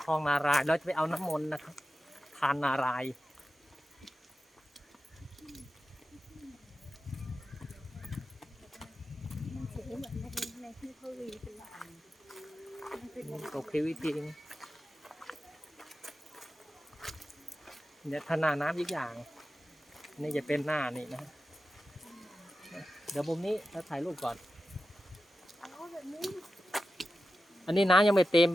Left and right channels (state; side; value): normal; both; correlation 0.92